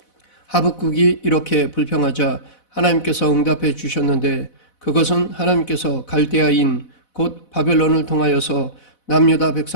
하박국이 이렇게 불평하자 하나님께서 응답해 주셨는데 그것은 하나님께서 갈대아인 곧 바벨론을 통하여서 남유다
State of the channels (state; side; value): late; right; 4.0 ms